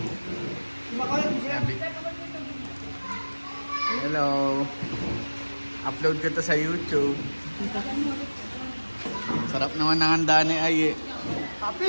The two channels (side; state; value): both; inverted; correlation -1.00